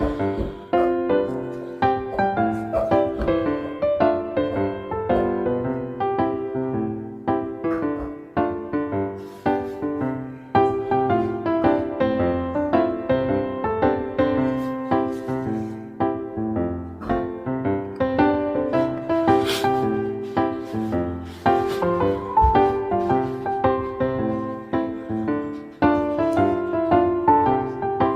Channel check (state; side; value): identical; both; correlation 1.00